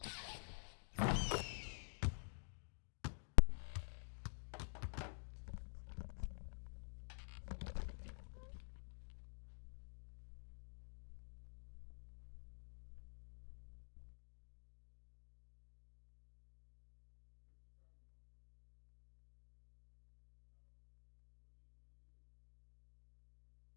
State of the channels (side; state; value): right; silent; digital silence